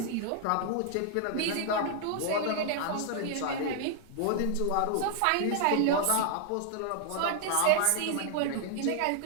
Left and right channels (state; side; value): different; both; correlation -0.01